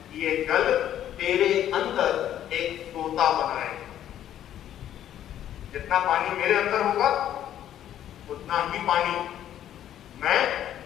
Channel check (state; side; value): quieter; right; 11.2 dB